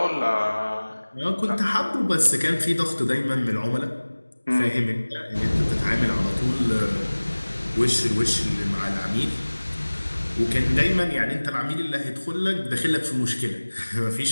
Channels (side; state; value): both; inverted; correlation -1.00